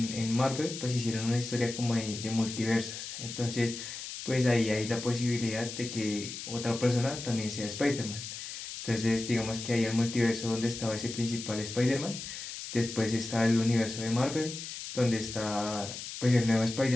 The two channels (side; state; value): left; noise; hiss, 8 dB below the sound